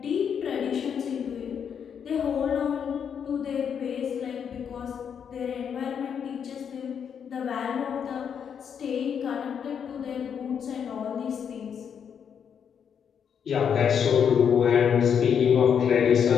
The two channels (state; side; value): quieter; right; 7.6 dB